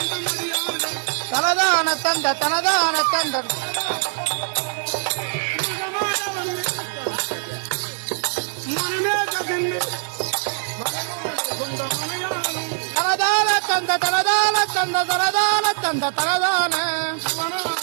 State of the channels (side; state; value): left; silent; 64 dB below the other